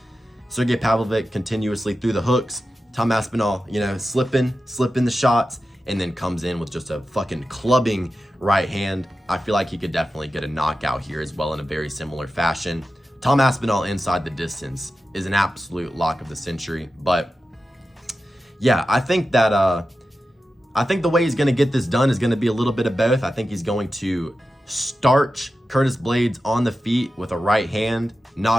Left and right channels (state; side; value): normal; both; correlation 0.92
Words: Sergey Pavlovich continuously threw the hooks. Tom Aspinall, you know, slipping the shots, and then comes in with just a fucking clubbing right hand. I feel like he could definitely get a knockout here as well in a very similar fashion. Tom Aspinall inside the distance is an absolute lock of the century. But yeah, I think that the way he's going to get this done is going to be a little bit of both. I think he's going to starch Curtis Blaydes on the feet with a right hand,